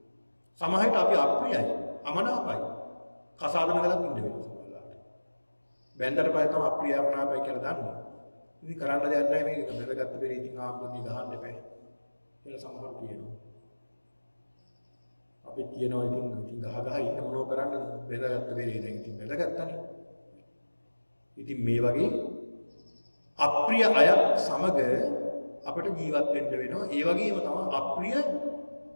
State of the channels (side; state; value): both; inverted; correlation -1.00